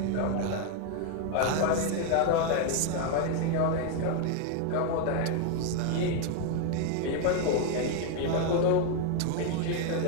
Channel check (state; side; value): different; both; correlation 0.01